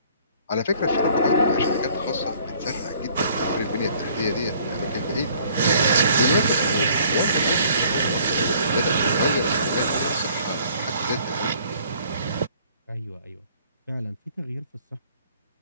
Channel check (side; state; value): both; inverted; correlation -0.58